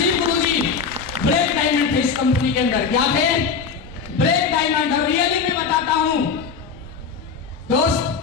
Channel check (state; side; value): quieter; right; 5.7 dB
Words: गुरुजी ब्रेक डायमंड थे इस कंपनी के अंदर। क्या थे? Break diamond. और रियली मैं बताता हूं दोस्त,